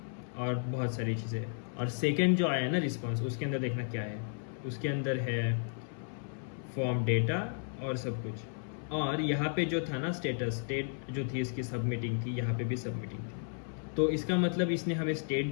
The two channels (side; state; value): right; silent; 55 dB below the other